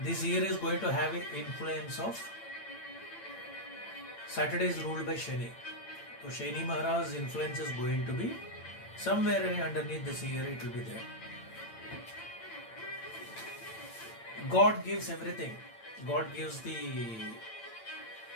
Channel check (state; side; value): late; right; 8.8 ms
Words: This year is going to have an influence of Saturday is ruled by Shani. So Shani Maharaj's influence is going to be somewhere underneath this year, it will be there. God gives everything. God gives the